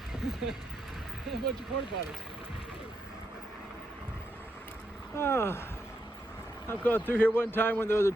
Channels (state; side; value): normal; both; correlation 0.82